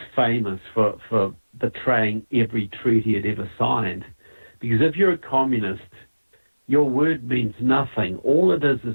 famous for betraying every treaty it ever signed. Because if you're a communist, your word means nothing. All it is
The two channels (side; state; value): both; inverted; correlation -1.00